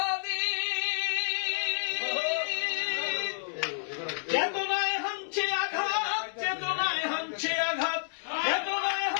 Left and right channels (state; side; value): silent; right; 58 dB below the other